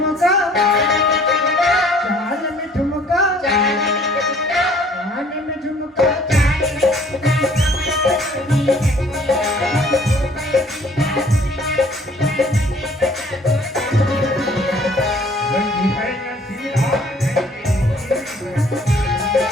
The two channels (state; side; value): normal; both; correlation 0.56